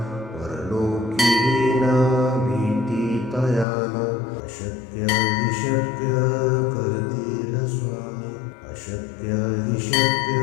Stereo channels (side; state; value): right; drops out; at 3.7 s